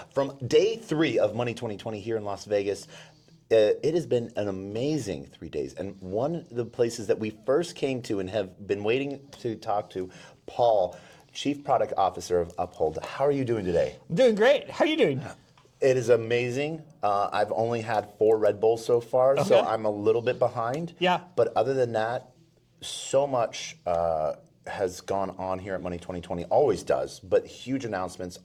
from day 3 of Money 2020 here in Las Vegas. It has been an amazing 3 days, and one of the places that we first came to and have been waiting to talk to, Paul, Chief Product Officer of Uphold. How are you doing today? I'm doing great. How are you doing? It is amazing. I've only had 4 Red Bulls so far, so I'm a little bit behind. Yeah. But other than that, so much has gone on here at Money 2020, always does, but huge announcements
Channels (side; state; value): both; identical; correlation 1.00